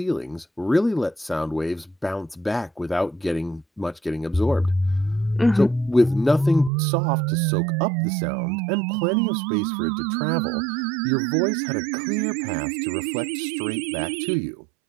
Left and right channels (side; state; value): left; drops out; at 6.7 s